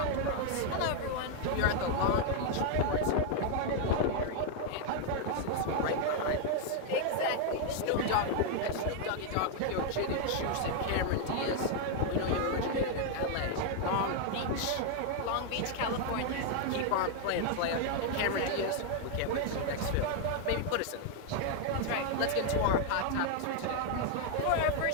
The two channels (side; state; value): both; different; correlation 0.00